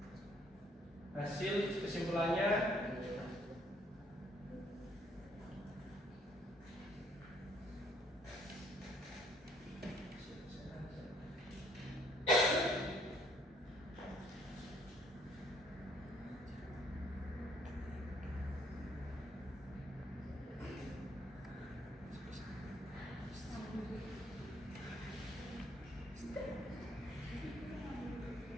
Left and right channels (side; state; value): both; normal; correlation 0.65